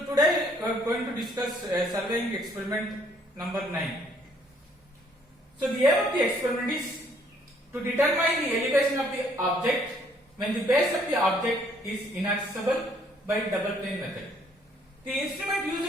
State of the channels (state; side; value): normal; both; correlation 0.64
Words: today we are going to discuss surveying experiment number 9. So the aim of the experiment is to determine the elevation of the object when the base of the object is inaccessible by double plane method. The instrument